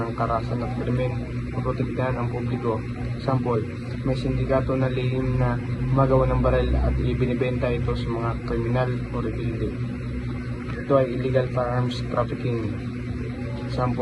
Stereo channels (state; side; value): identical; both; correlation 1.00